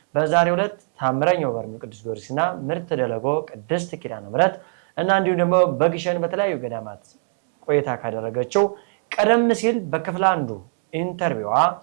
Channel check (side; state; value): left; silent; 61 dB below the other